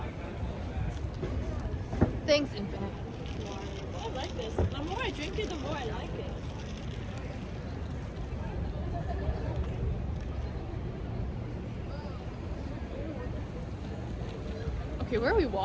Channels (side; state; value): both; identical; correlation 1.00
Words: Thanks, Infinite. I like this. The more I drink it, the more I like it. Okay, where are we